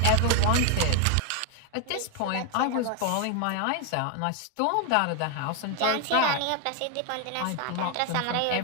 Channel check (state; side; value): different; both; correlation 0.01